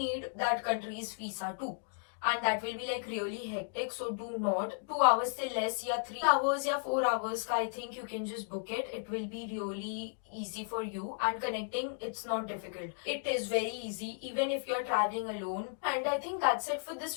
that country's visa too, and that will be like really hectic. So do not 2 hours से less या 3 hours या 4 hours का, I think you can just book it. It will be really easy for you, and connecting, it's not difficult. It is very easy even if you're traveling alone. And I think that's it for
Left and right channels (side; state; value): right; silent; digital silence